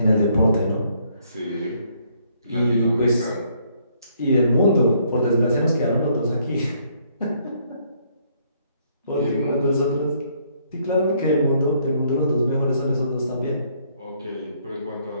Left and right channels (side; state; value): both; inverted; correlation -0.68